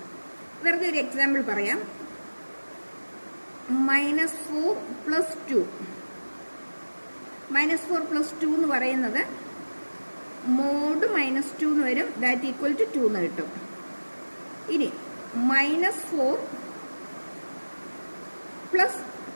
വെറുതെ ഒരു എക്സാമ്പിൾ പറയാം. -4 + 2, -4 + 2 എന്ന് പറയുന്നത് മോഡ് -2 എന്ന് വരും, ദാറ്റ് ഈക്വൽ ടു 2 എന്ന് കിട്ടും. ഇനി -4 +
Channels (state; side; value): inverted; both; correlation -1.00